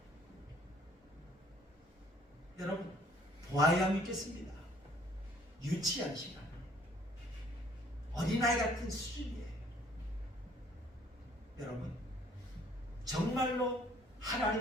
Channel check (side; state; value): both; normal; correlation 0.59